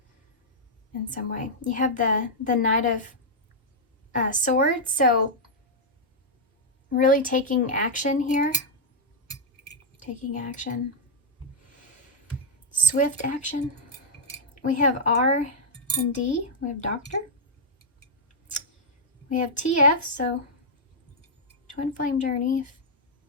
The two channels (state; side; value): normal; both; correlation -0.05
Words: in some way. You have the Knight of Swords, so really taking action here. Taking action. Swift action. We have R and D. We have Doctor. We have TF, so Twin Flame Journey,